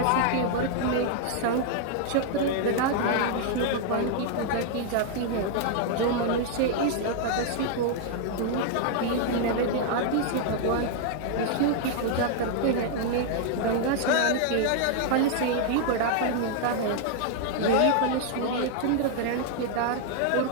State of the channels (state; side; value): different; both; correlation 0.00